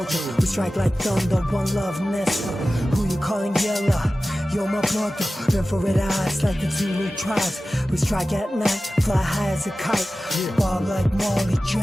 We strike like thunder, one love, Nesta. Who you calling yellow? You're my brother, infrared eyes like the Zulu tribes. We strike at night, fly high as a kite. Bob like Marley,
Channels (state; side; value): normal; both; correlation 0.95